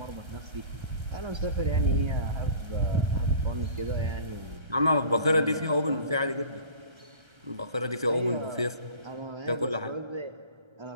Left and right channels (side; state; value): left; late; 1.3 ms